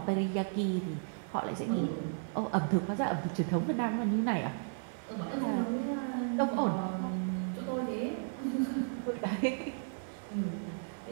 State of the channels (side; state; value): left; silent; 55 dB below the other